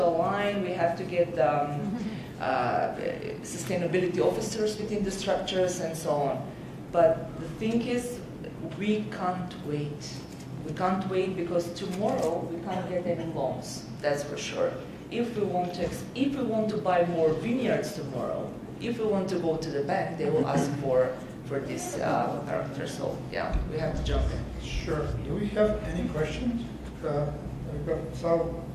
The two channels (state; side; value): identical; both; correlation 1.00